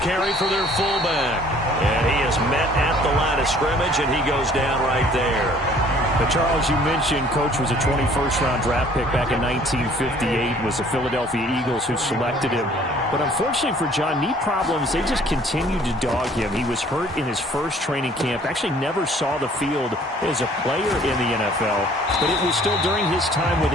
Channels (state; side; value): normal; both; correlation 0.56